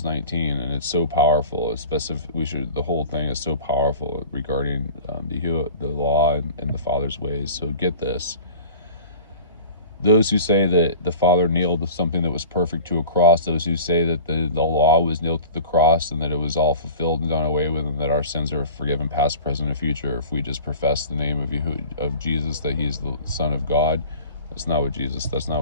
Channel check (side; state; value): both; inverted; correlation -0.40